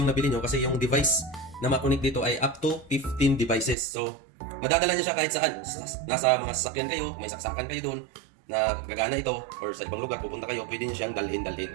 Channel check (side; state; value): left; drops out; at 3.8 s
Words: nabili nyo kasi yung device na makonect dito ay up to 15 devices. So, madadala nyo siya kahit saan. Nasa mga sasakyan kayo, may saksakan kayo doon na gagana ito, or sa ibang lugar pupunta kayo, pwede nyo siyang dalhin.